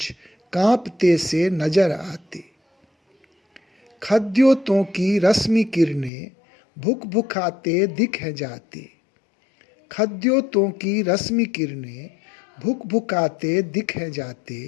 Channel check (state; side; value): drops out; right; at 6.1 s